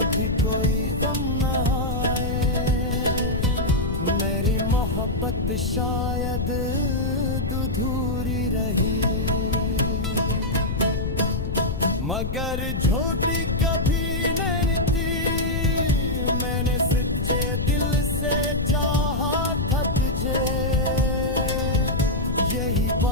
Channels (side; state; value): left; noise; rumble, 3 dB below the sound